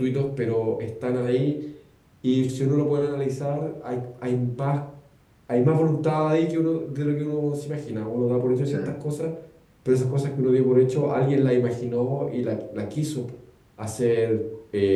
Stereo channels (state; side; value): identical; both; correlation 1.00